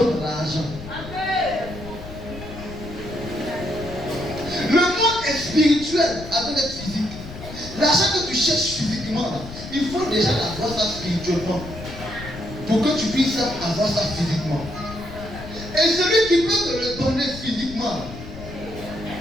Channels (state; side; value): noise; left; rumble, 12 dB below the sound